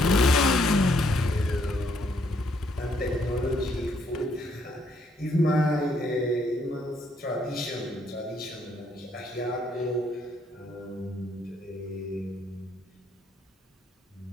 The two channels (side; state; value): both; normal; correlation 0.70